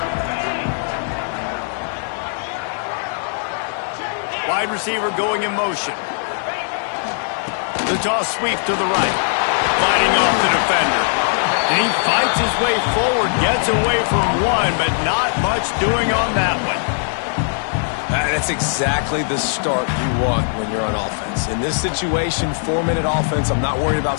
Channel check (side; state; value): right; silent; 64 dB below the other